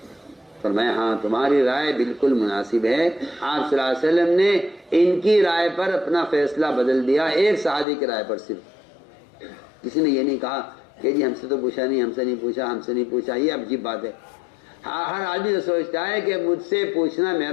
فرمایا ہاں تمہاری رائے بالکل مناسب ہے. آپ صلی اللہ علیہ وسلم نے ان کی رائے پر اپنا فیصلہ بدل دیا, ایک صحابی کی رائے پر صرف. کسی نے یہ نہیں کہا کہ جی ہم سے تو پوچھا نہیں, ہم سے نہیں پوچھا, ہم سے نہیں پوچھا. یہ عجیب بات ہے. ہر آدمی تو سوچتا ہے کہ مجھ سے پوچھنا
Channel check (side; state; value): right; drops out; at 7.9 s